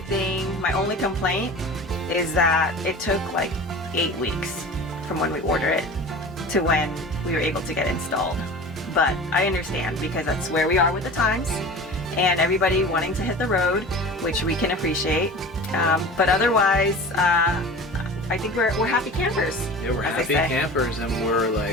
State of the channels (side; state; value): both; normal; correlation 0.37